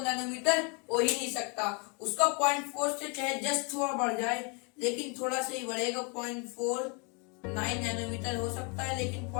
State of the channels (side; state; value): right; quieter; 33.9 dB